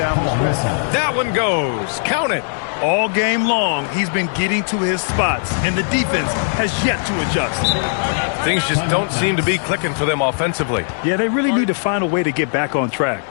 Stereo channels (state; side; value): silent; right; digital silence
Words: the stretch. That one goes. Count it. All game long, he's been getting to his spots, and the defense has yet to adjust. Things just don't seem to be clicking for them offensively. Yeah, they really need to find a way to get back on track.